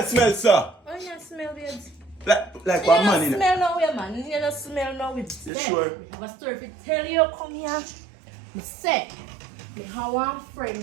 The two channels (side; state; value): left; drops out; at 5.5 s